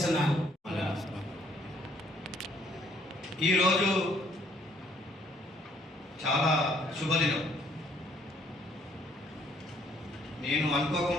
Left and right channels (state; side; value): normal; both; correlation 0.65